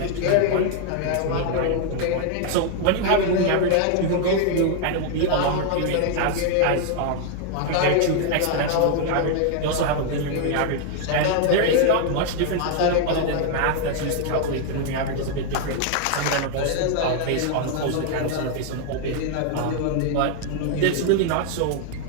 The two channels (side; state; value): both; different; correlation 0.00